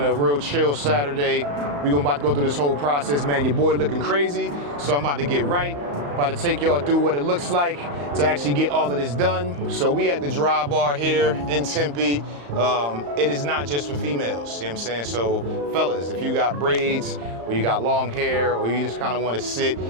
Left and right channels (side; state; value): left; late; 35 ms